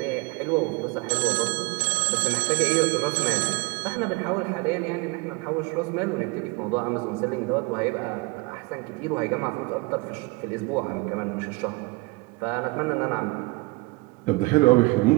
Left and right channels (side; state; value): left; quieter; 25.2 dB